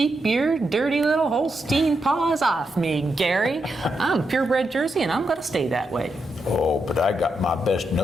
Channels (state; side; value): normal; both; correlation 0.83